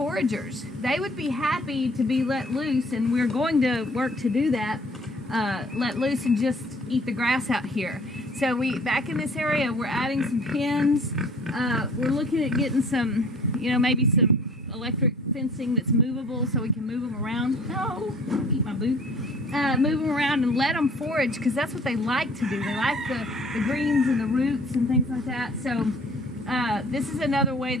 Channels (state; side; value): normal; both; correlation 0.52